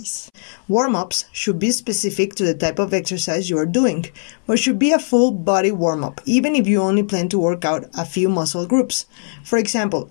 Warm-ups should be specific to the type of exercise you are doing, but should be a full body warm-up, even if you only plan to work out a few muscle groups. For example,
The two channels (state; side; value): silent; right; 66 dB below the other